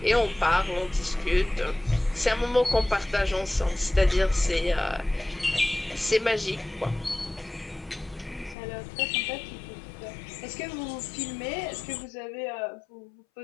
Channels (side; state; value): right; drops out; at 8.6 s